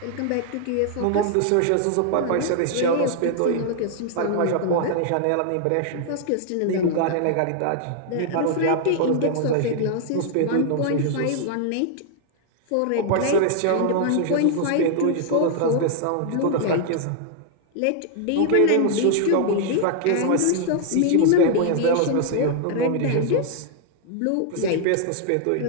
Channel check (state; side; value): different; both; correlation -0.01